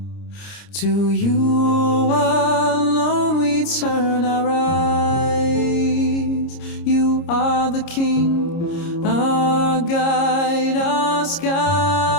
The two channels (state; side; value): late; right; 30 ms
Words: To you alone we turn our eyes. You are the King, our guide, our skies.